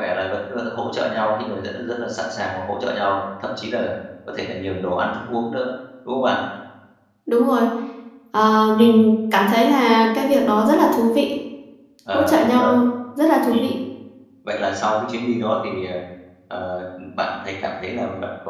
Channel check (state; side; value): identical; both; correlation 1.00